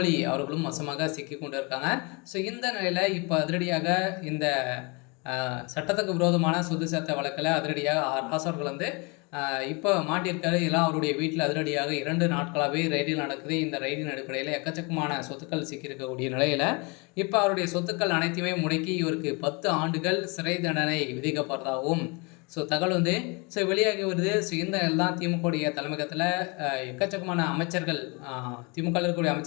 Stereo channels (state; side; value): quieter; right; 30.2 dB